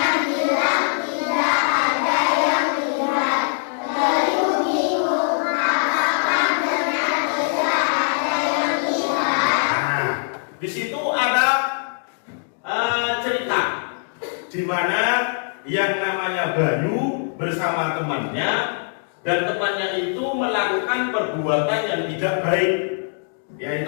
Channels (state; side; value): silent; right; digital silence